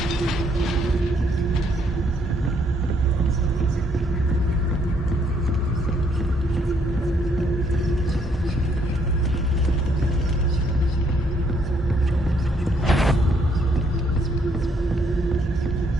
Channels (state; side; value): normal; both; correlation 0.69